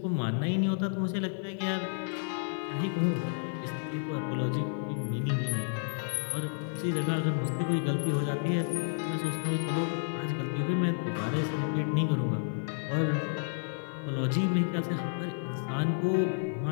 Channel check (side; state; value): right; silent; digital silence